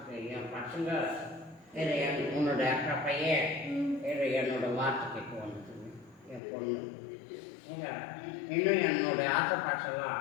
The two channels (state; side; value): drops out; right; at 6.4 s